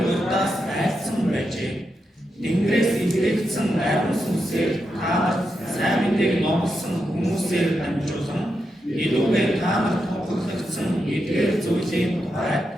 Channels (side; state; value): both; normal; correlation 0.86